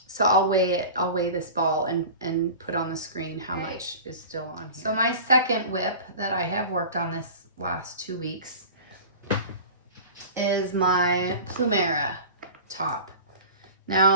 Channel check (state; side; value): inverted; both; correlation -0.37